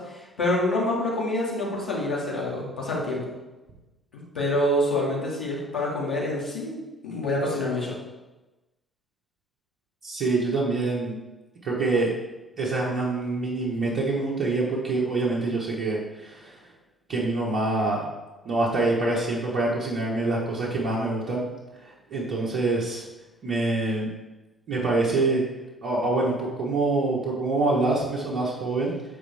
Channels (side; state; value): both; normal; correlation 0.54